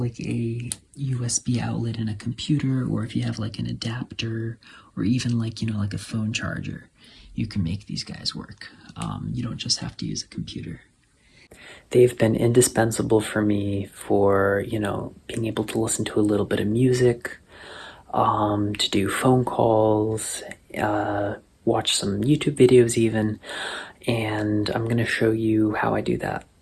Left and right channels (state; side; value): identical; both; correlation 1.00